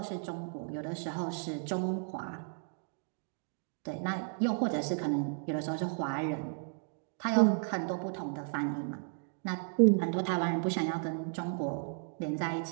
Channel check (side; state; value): left; silent; 55 dB below the other